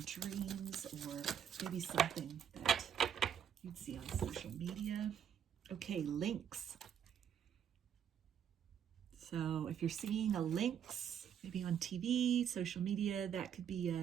dreams, or maybe something that you'd see on social media. Okay, lynx. So if you're seeing a lynx, maybe on TV, social media, that could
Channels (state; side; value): quieter; left; 8.6 dB